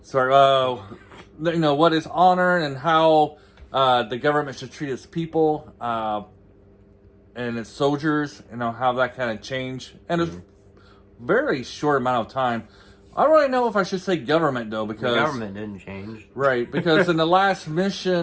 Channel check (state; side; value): identical; both; correlation 1.00